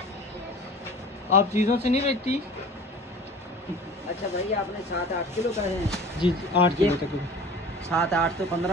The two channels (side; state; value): both; normal; correlation 0.41